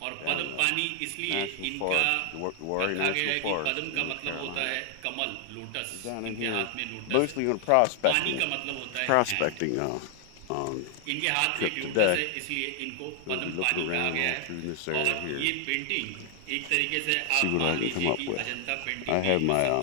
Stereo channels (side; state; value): both; different; correlation 0.00